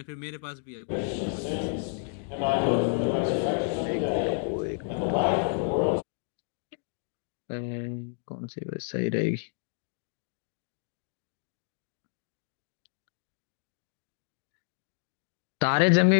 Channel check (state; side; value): silent; right; digital silence